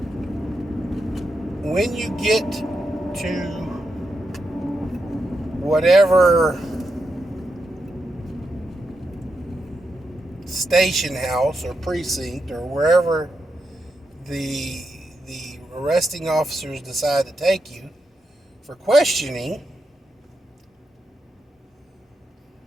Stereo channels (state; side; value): normal; both; correlation 0.85